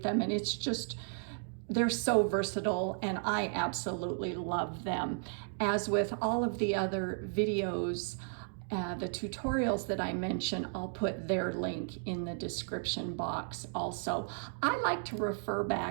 them, and it's just, they're so versatile, and I absolutely love them. As with all of the other videos, the tutorials that I mention, I'll put their link in the description box also. I like to refer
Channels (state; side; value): silent; left; digital silence